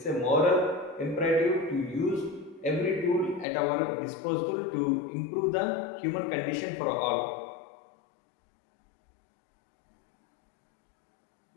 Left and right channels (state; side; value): drops out; right; at 3.5 s